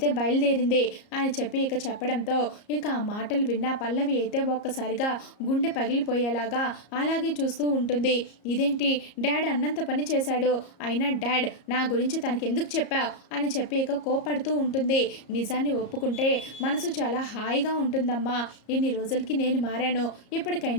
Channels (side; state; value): right; late; 34 ms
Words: బయలుదేరింది అని చెప్పి ఇక చెప్పడంతో ఇక ఆ మాటలు విన్న పల్లవి అయితే ఒక్కసారిగా గుండె పగిలిపోయేలాగా అలాగే చూస్తూ ఉంటుంది. ఇదేంటి డాడ్ అన్నంత పని చేశాడు, అయినా డాడ్ నా గురించి తనకి ఎందుకు చెప్పావు అని చెప్పి ఇక కోపడుతూ ఉంటుంది. నిజాన్ని ఒప్పుకుంటే మనసు చాలా హాయిగా ఉంటుందమ్మా. ఇన్ని రోజులకి నేను మారాను,